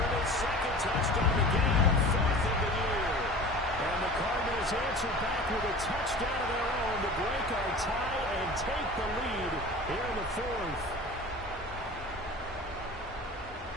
his 2nd touchdown of the game, 4th of the year. And the Cardinals answer back with a touchdown of their own to break our tie and take the lead here in the 4th.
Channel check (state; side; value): normal; both; correlation 0.39